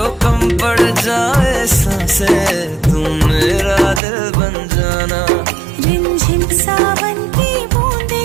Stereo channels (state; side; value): drops out; left; at 4.0 s